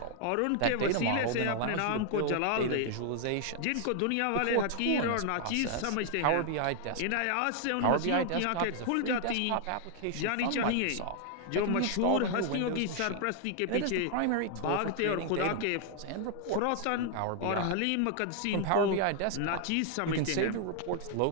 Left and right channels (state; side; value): different; both; correlation 0.00